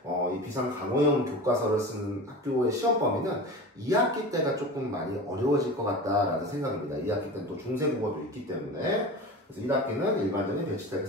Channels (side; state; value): both; normal; correlation 0.32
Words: 이 비상 강호형 교과서를 쓰는 학교의 시험 범위는 2학기 때가 조금 많이 어려워질 것 같다라는 생각입니다. 2학기 때는 또 중세국어도 있기 때문에 그래서 1학기는 일반적인 배치다